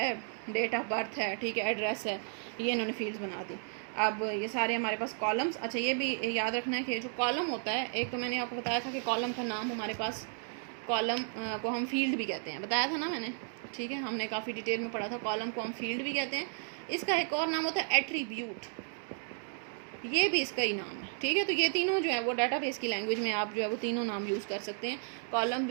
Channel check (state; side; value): silent; left; 55 dB below the other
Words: डेट ऑफ बर्थ है, ठीक है, एड्रेस है, ये इन्होंने फील्ड्स बना दी। अब ये सारे हमारे पास कॉलम्स, अच्छा ये भी याद रखना है कि जो कॉलम होता है, एक तो मैंने आपको बताया था कि कॉलम का नाम हमारे पास, कॉलम को हम फील्ड भी कहते हैं, बताया था ना मैंने। ठीक है, हमने काफ़ी डिटेल में पढ़ा था, कॉलम को हम फील्ड भी कहते हैं। इसका एक और नाम होता है एट्रीब्यूट, ये भी इसका ही नाम है। ठीक है, तो ये तीनों जो है वो डाटाबेस की लैंग्वेज में आप जो है वो तीनों नाम यूज़ कर सकते हैं, कॉलम